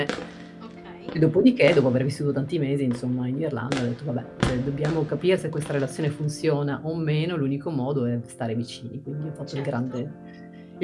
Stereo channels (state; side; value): identical; both; correlation 1.00